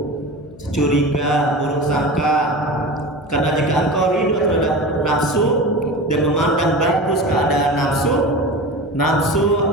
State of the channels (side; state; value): left; noise; hum, 20 dB below the sound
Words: curiga, buruk sangka. Karena jika engkau ridho terhadap nafsu dan memandang bagus keadaan nafsu, nafsu